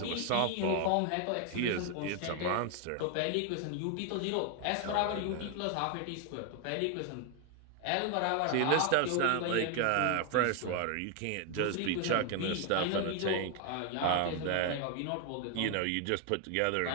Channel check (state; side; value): different; both; correlation 0.01